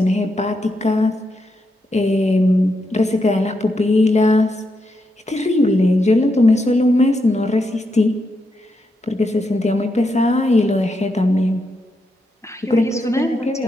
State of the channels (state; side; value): normal; both; correlation 0.82